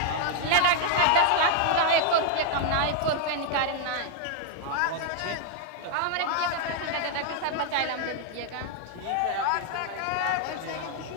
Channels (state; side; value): different; both; correlation 0.00